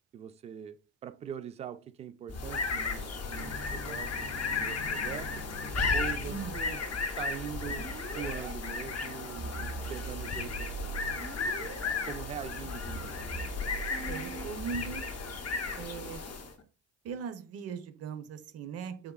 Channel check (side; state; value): both; normal; correlation 0.18